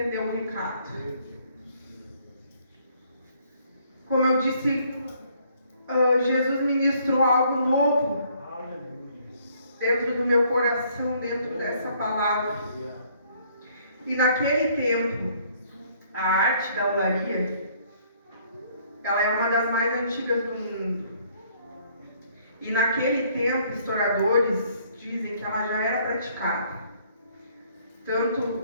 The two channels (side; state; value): both; inverted; correlation -0.63